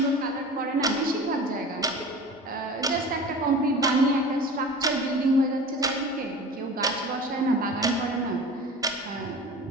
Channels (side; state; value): both; normal; correlation 0.37